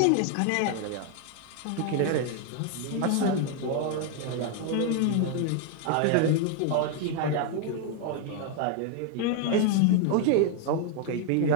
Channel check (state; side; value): different; both; correlation 0.00